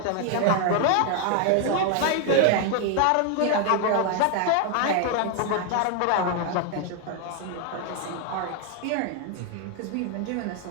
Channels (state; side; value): different; both; correlation 0.00